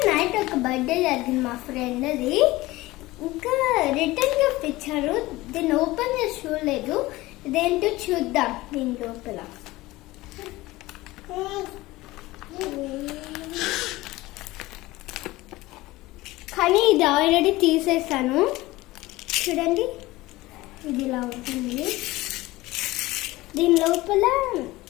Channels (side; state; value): right; quieter; 19.1 dB